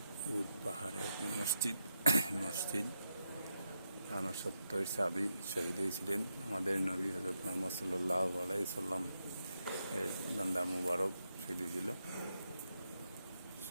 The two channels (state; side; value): inverted; both; correlation -0.84